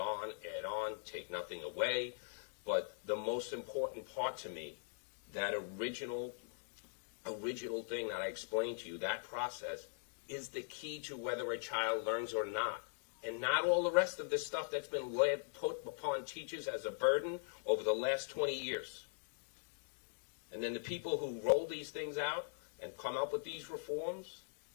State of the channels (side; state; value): right; silent; digital silence